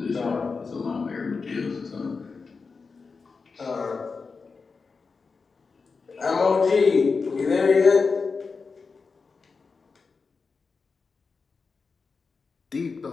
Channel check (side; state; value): right; quieter; 4.7 dB